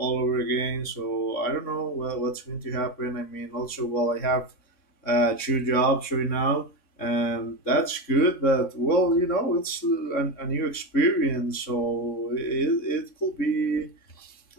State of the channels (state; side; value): late; right; 3.7 ms